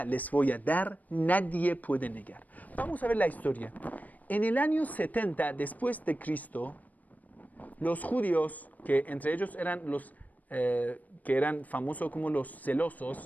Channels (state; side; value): late; right; 0.077 ms